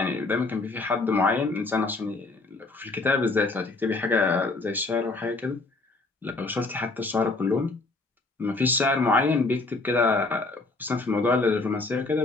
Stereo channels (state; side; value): quieter; right; 3.4 dB